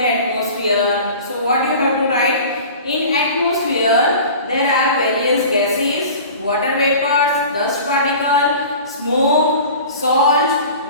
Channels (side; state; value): both; inverted; correlation -0.40